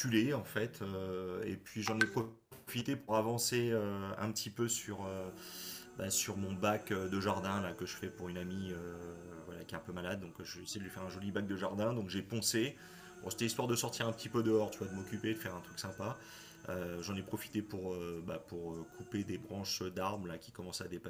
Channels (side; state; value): both; identical; correlation 1.00